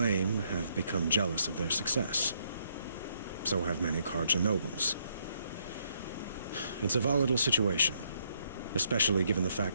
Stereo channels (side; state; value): both; inverted; correlation -0.72